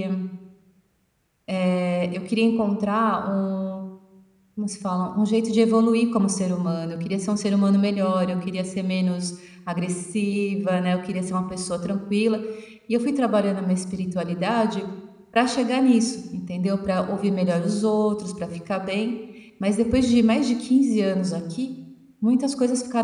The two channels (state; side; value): identical; both; correlation 1.00